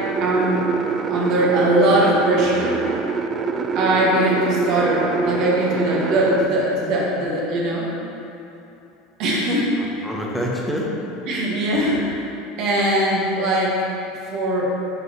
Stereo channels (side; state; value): both; normal; correlation 0.31